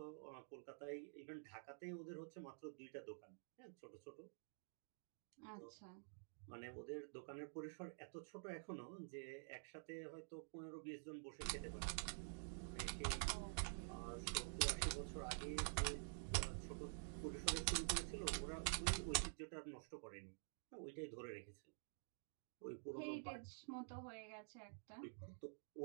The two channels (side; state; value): left; silent; digital silence